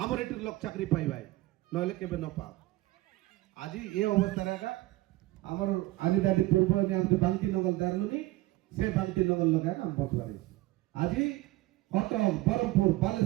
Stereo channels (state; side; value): quieter; left; 18.3 dB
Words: এটির লোক চাকরি পাইবাই নইলে কেবে ন পা আজি এই অবস্থা রাখা আমার আদি দাদি পূর্ব নিয়ম যে বান্তি নগল দারলুনি সে বান্তি নগল লগা আমি বদলারি আজি কত বরমপুর